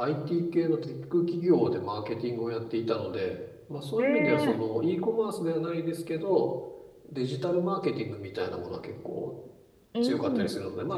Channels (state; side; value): identical; both; correlation 1.00